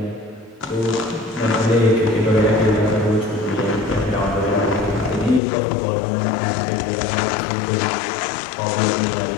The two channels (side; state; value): right; drops out; at 5.4 s